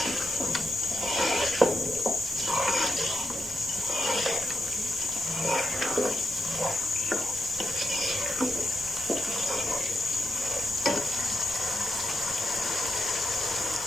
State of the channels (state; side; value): normal; both; correlation 0.83